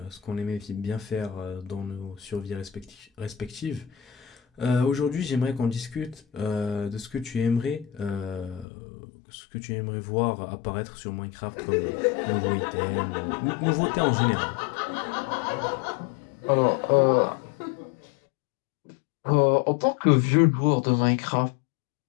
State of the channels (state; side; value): drops out; right; at 8.7 s